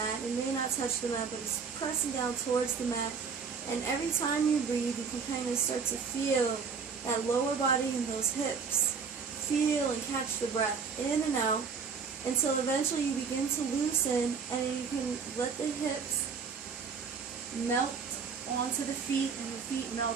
It may not touch the mat, but it's pressing down towards the mat. And every time you breathe, you can kind of start to feel that lower body and those hips. Feel and catch the breath in and out until eventually you begin to loosen and you can let the hips melt onto the feet and the feet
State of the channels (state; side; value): quieter; left; 5.7 dB